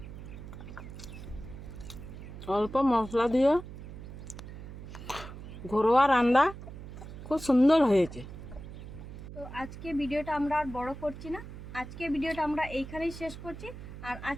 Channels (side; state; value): right; noise; hum, 12 dB below the sound